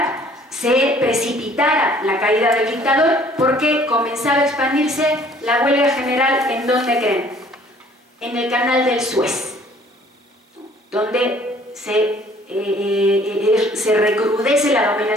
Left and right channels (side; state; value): both; normal; correlation 0.56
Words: se precipitara la caída del dictador, porque comenzaba a expandirse la huelga general. ¿En dónde creen? En el canal del Suez, donde se recrudece la